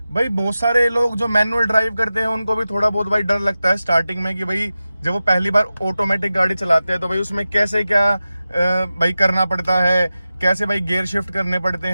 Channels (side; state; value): both; inverted; correlation -0.94